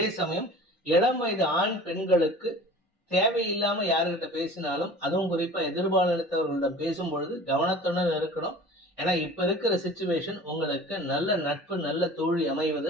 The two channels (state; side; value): normal; both; correlation 0.42